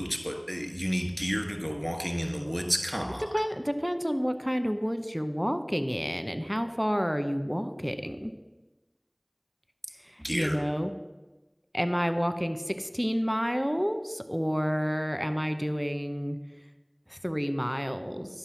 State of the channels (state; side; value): identical; both; correlation 1.00